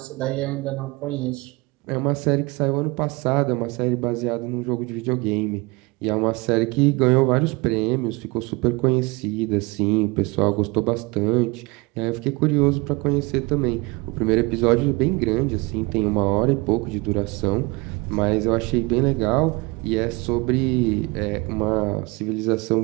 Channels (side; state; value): left; quieter; 25.5 dB